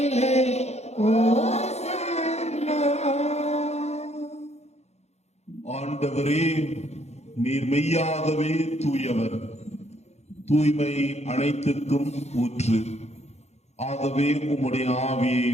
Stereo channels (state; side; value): late; right; 0.32 ms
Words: ஓசன்னா. ஆண்டவரே, நீர் மெய்யாகவே தூயவர், தூய்மை அனைத்துக்கும் ஊற்று. ஆகவே உம்முடைய ஆவியை